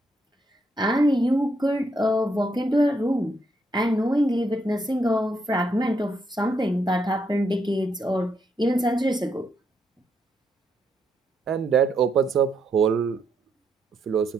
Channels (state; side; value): normal; both; correlation 0.77